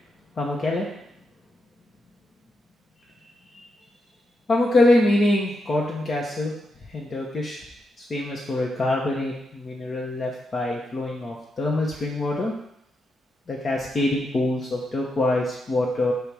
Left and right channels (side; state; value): both; normal; correlation 0.84